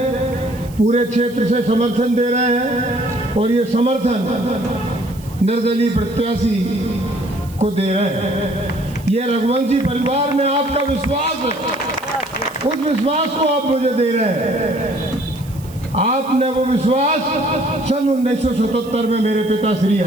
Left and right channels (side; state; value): right; noise; hiss, 22 dB below the sound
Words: पूरे क्षेत्र से समर्थन दे रहे हैं और ये समर्थन निर्दलीय प्रत्याशी को दे रहे हैं। ये रघुवंशी परिवार में आपका विश्वास है, उस विश्वास को आप मुझे दे रहे हैं। आपने वो विश्वास सन 1977 में मेरे पिता श्री